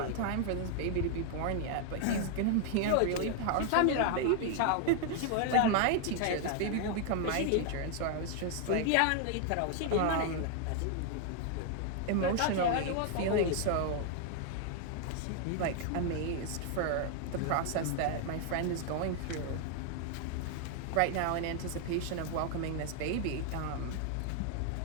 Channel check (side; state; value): both; different; correlation 0.00